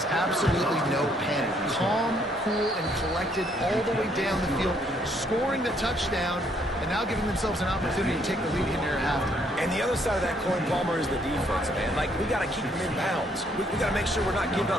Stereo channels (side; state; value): both; normal; correlation 0.68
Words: absolutely no panic. Calm, cool, and collected all the way down the field, scoring the touchdown, and now giving themselves an opportunity to take the lead in there after. And the other side of that coin, Palmer, is the defense, man. Like, we got to keep them in bounds. We got to make sure we're not giving